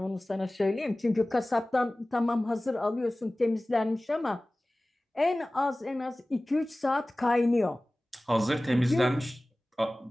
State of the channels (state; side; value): normal; both; correlation 0.98